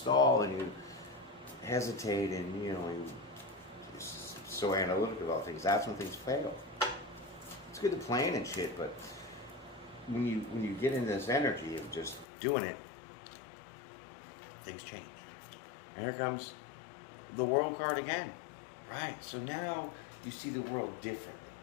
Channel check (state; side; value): drops out; right; at 12.2 s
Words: and you hesitate and, you know, you're so analytical about things, that's when things fail. It's good to plan and shit, but when you get into this energy of just doing it, things change. And here comes the World card again. Right, so now you see the world differently.